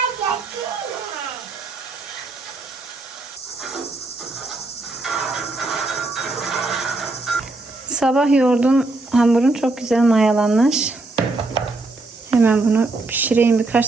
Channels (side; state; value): left; quieter; 3.1 dB